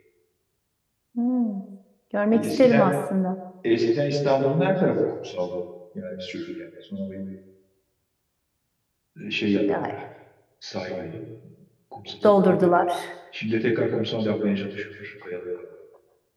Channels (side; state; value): both; identical; correlation 1.00